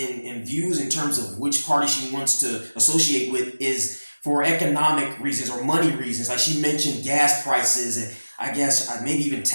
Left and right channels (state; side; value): inverted; both; correlation -1.00